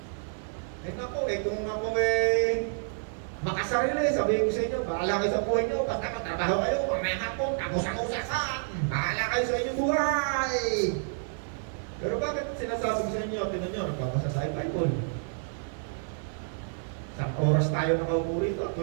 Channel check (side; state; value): left; silent; digital silence